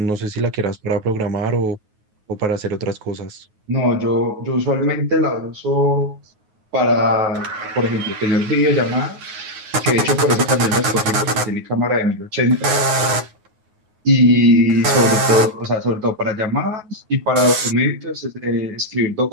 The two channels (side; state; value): left; late; 9.5 ms